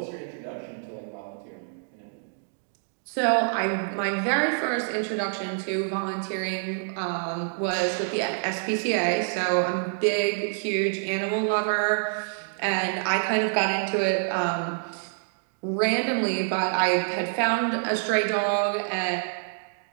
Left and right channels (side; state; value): left; silent; digital silence